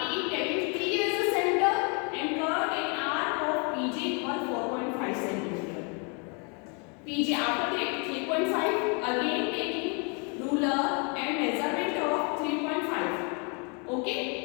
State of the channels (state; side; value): quieter; right; 34.9 dB